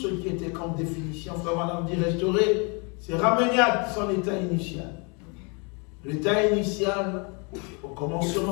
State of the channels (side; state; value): right; quieter; 33.1 dB